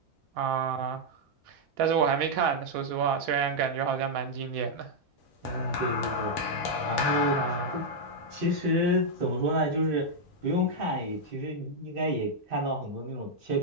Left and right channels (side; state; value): both; normal; correlation -0.03